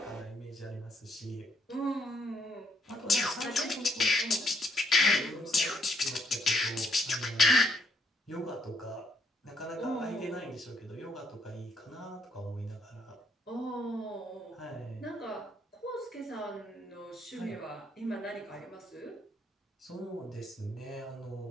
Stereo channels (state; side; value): normal; both; correlation 0.71